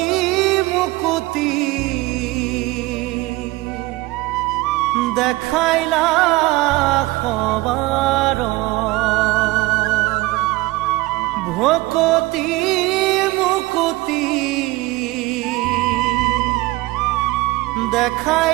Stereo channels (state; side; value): quieter; left; 20.3 dB